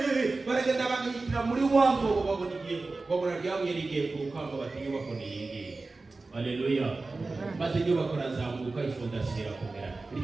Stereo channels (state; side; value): quieter; left; 3.6 dB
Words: baragenda bagihitira muri wa mwobo, babona igihe, babona ryabuye rigiye ku rukamba, bati inyubako ni iyi ngiyi. Haleluya. Maze inyubako razamuka, ifondasiyo irakomera.